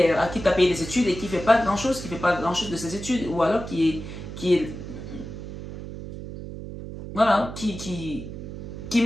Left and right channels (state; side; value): noise; right; hum, 10 dB below the sound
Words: à qui tu as payé des études et qui ne fait pas grand-chose, de ses études, ou alors voilà, qui